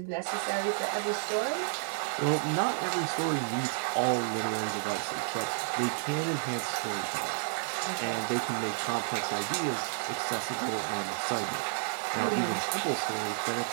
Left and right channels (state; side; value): silent; left; digital silence